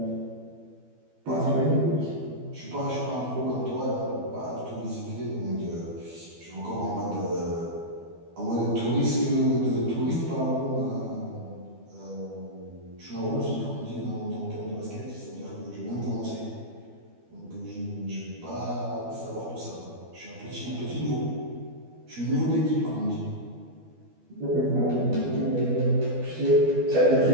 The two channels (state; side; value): late; left; 12 ms